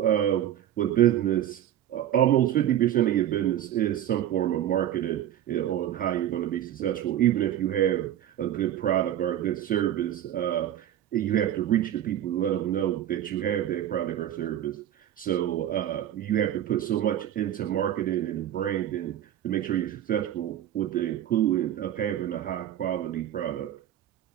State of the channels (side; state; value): left; quieter; 11.5 dB